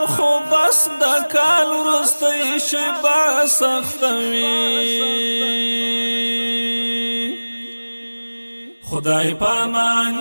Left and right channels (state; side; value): inverted; both; correlation -1.00